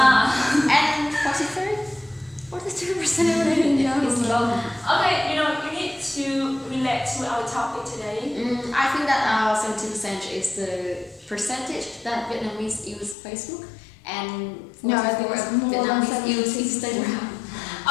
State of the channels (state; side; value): drops out; right; at 13.2 s